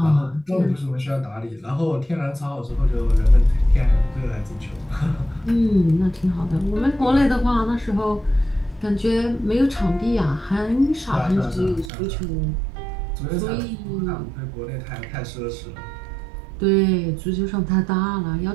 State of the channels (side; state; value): left; drops out; at 11.9 s